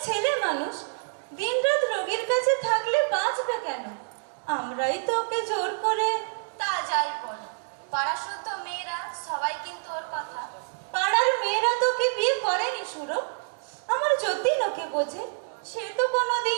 ছেলে মানুষ, দিনরাত রোগীর কাছে থাকলে বাঁচবে কেন? আমরাই তো ওকে জোর করে। তা যাই বলো, পাড়া শুদ্ধ মেয়েরা সবাই কিন্তু ওর কথা। পাড়ার মেয়েরা তোকে বিয়ে করেনি সুরো। আমার যতীন ওকে বোঝে, সে তো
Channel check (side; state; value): left; silent; digital silence